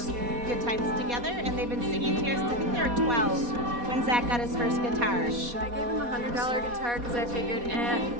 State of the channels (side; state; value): left; late; 4.2 ms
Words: good times together, and they've been singing together since I think they were 12 when Zach got his first guitar. I gave him a $100 guitar because I figured,